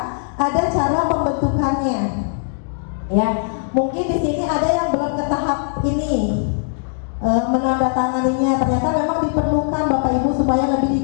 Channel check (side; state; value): right; silent; digital silence